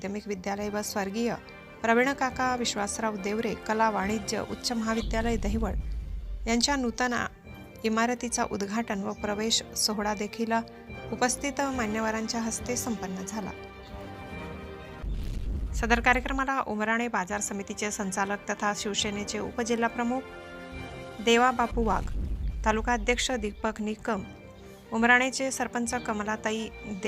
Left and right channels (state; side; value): identical; both; correlation 1.00